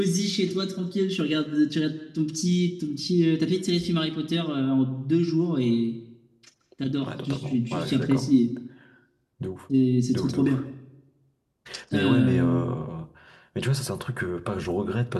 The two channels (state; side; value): identical; both; correlation 1.00